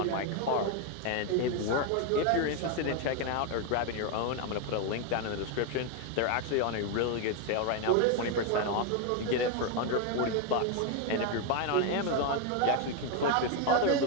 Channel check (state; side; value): different; both; correlation 0.01